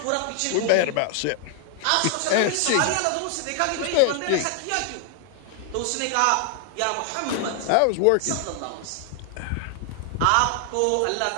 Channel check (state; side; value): different; both; correlation 0.00